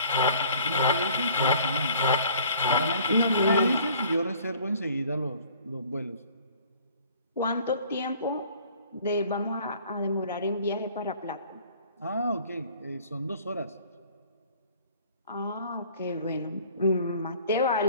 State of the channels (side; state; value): both; inverted; correlation -0.52